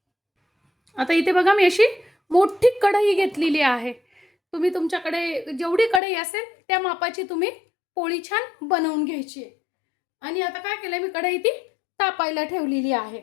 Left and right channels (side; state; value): right; drops out; at 6.0 s